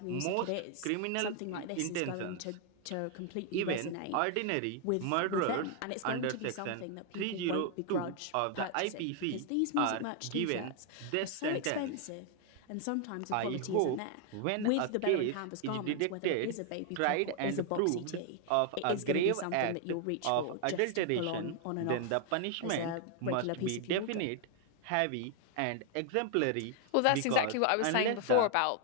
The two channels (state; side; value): different; both; correlation 0.00